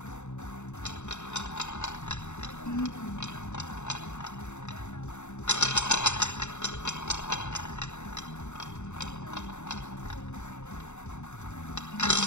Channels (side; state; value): right; late; 0.83 ms